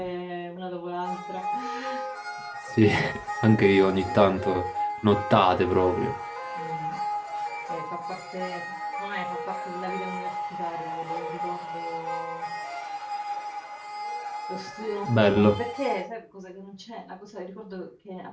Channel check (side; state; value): both; identical; correlation 1.00